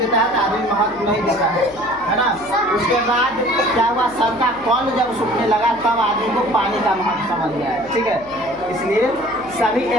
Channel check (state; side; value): noise; left; hum, 22 dB below the sound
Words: है, तो आदमी महत्व नहीं देता है ना? उसके बाद क्या हुआ, सर का कॉल जब सूखने लगा तब आदमी को पानी का महत्व समझ गया है, ठीक है। इसलिए सभी